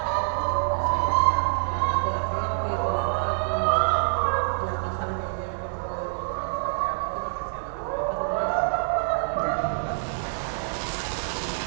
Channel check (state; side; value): silent; left; 61 dB below the other